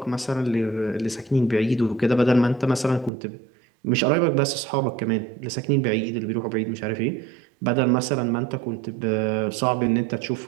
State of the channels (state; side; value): drops out; left; at 3.1 s